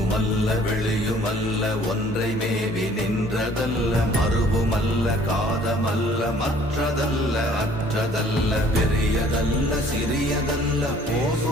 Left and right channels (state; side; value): normal; both; correlation 0.56